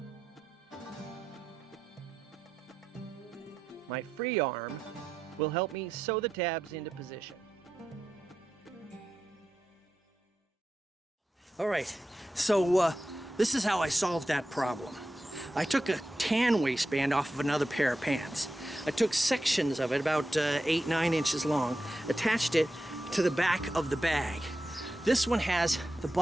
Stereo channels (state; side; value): normal; both; correlation 0.90